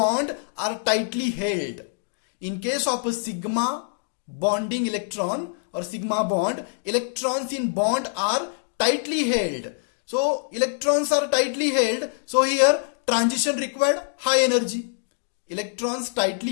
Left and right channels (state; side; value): silent; right; digital silence